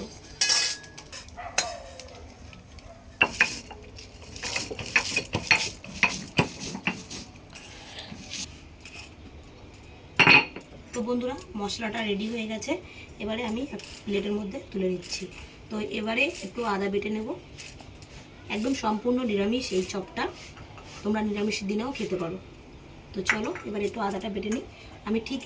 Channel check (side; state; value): both; identical; correlation 1.00